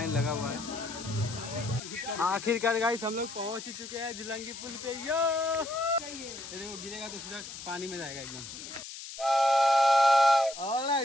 लगा हुआ है। आखिरकार गाइस हम लोग पहुँच ही चुके हैं झुलंगी पुल पे। यो ये देखो, गिरेगा तो सीधा पानी में जाएगा एकदम।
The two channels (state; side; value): noise; left; hiss, 11 dB below the sound